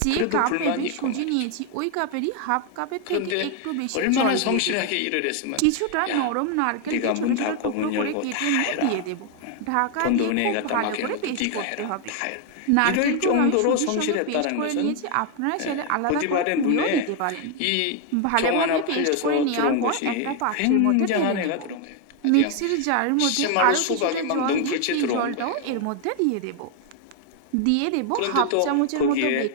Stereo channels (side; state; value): both; different; correlation 0.01